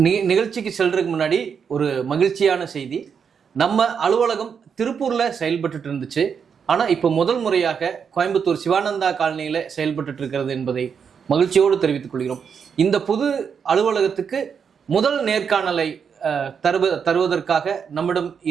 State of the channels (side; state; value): left; quieter; 6.8 dB